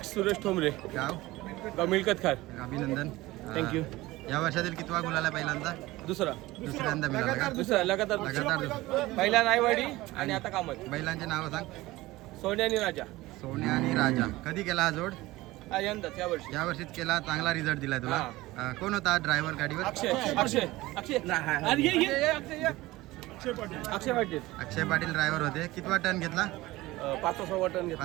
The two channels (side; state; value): left; quieter; 18.9 dB